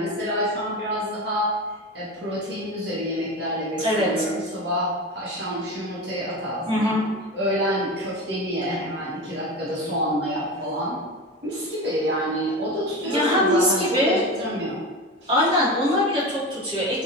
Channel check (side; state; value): both; normal; correlation 0.26